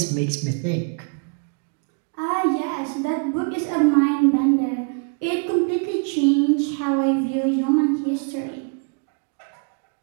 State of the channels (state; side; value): quieter; left; 37.0 dB